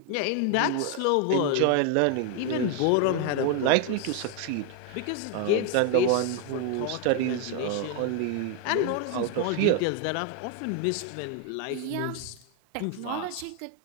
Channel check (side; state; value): both; different; correlation 0.01